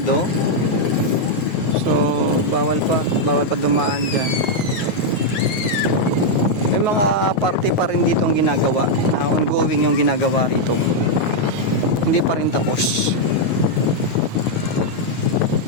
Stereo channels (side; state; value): right; late; 9.8 ms